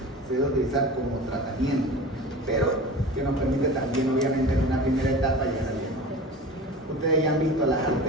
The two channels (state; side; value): normal; both; correlation 0.35